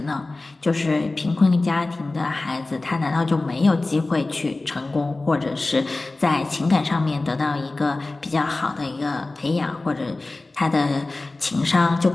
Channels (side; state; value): right; quieter; 3.1 dB